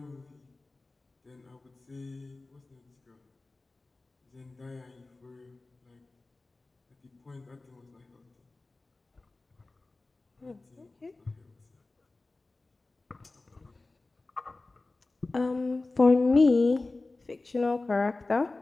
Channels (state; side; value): quieter; right; 3.3 dB